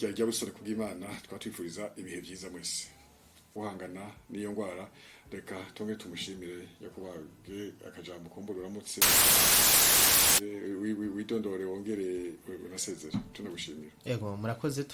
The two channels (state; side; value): identical; both; correlation 1.00